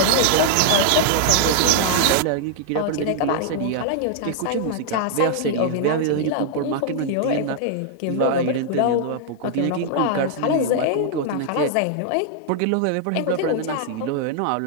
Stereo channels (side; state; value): both; different; correlation -0.01